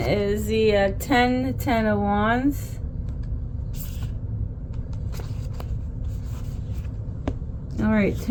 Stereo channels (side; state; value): both; identical; correlation 1.00